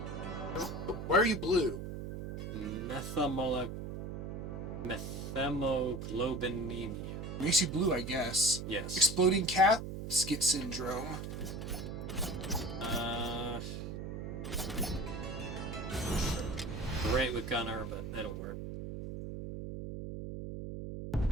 Why are you blue? Methemoglobinemia. Makes you blue, I guess. Yes. Exploding casket syndrome. Great with Gunner, but it'll work.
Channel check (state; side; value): noise; right; hum, 6 dB below the sound